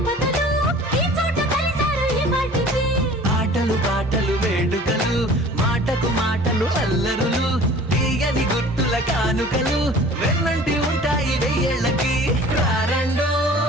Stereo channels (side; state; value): both; normal; correlation 0.46